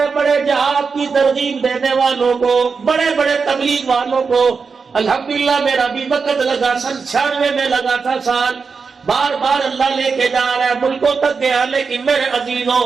بڑے جہاد کی ترغیب دینے والوں کو، بڑے بڑے تبلیغ والوں کو الحمدللہ میرا بھی وقت لگا، 96 میں لگا تھا سال، بار بار اللہ لے کے جا رہا ہے، ملکوں تک گیا، لیکن میرے عزیزوں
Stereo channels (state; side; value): quieter; left; 5.1 dB